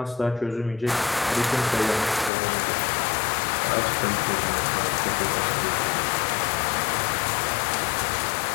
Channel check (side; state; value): right; drops out; at 2.3 s